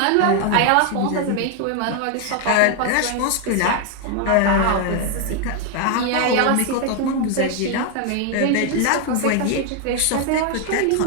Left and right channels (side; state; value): both; different; correlation 0.01